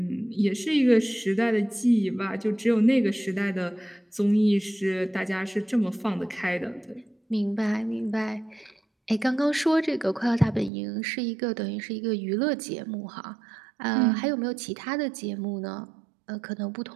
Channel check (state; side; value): drops out; left; at 10.7 s